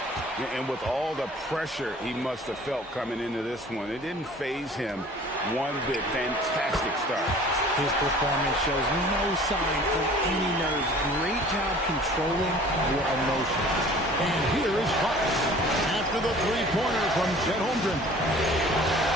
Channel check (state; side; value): normal; both; correlation 0.48